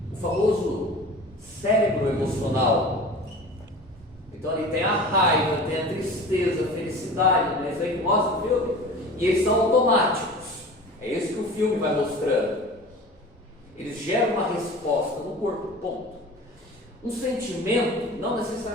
O famoso cérebro emocional. Então ali tem a raiva, tem a tristeza, a felicidade, né? Isso aí que mostra o filme. E eles são automáticos. É isso que o filme vai mostrando. Eles geram uma resposta no corpo, ponto. Um sentimento não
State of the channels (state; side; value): normal; both; correlation 0.38